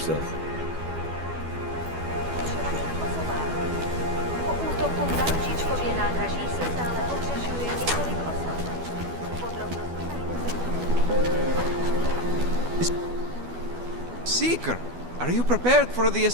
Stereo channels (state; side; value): late; left; 12 ms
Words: Po útoku na Ružičkově nádraží se stále ohřešuje několik osob. Podrobnosti najdete. Seeker, are you prepared for the